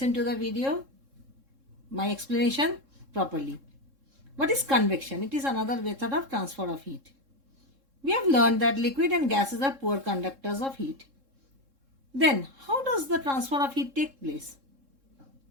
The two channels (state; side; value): late; left; 3.7 ms